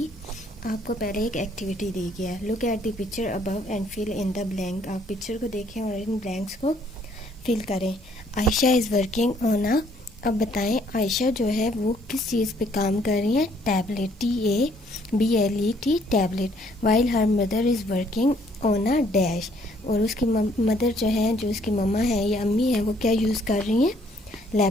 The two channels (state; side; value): normal; both; correlation 0.64